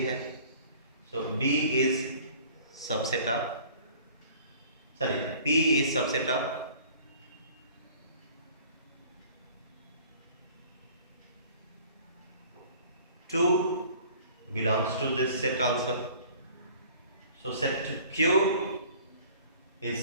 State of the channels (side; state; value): both; inverted; correlation -0.50